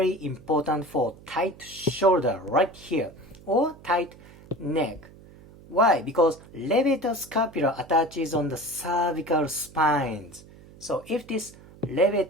important for tight shoulder right here or tight neck. Why? Because levator scapula attaches on the cervical spines. So if this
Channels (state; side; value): noise; right; hum, 21 dB below the sound